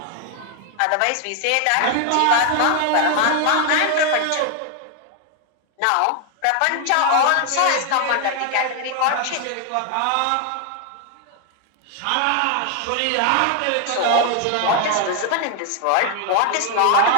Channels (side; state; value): both; different; correlation 0.00